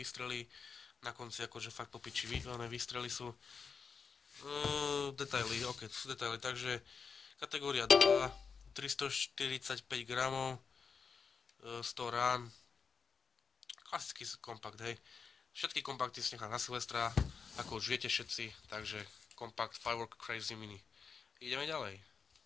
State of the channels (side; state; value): right; quieter; 5.6 dB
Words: Na konci akože fakt popiči výstrely sú. Detaily, ok, to sú detaily, takže kategória 2, 345 gramov, 100 rán, klasický kompakt, hej. Všetky kompakty si nechám na Silvestra, ako už viete všetci, takže kompakt Firework Crazy Mini. Ideme ďalej.